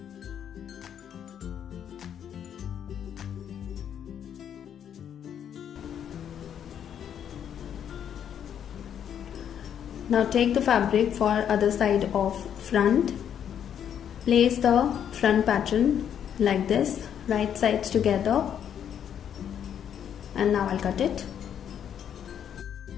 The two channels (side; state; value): right; quieter; 9.0 dB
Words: Now take the fabric for other side of front. Place the front pattern like this, right sides together, and now I'll cut it.